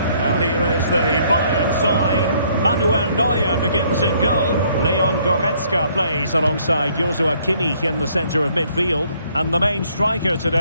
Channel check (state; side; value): inverted; both; correlation -0.65